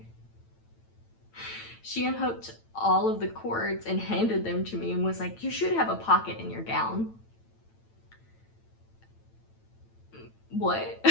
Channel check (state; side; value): late; right; 8.9 ms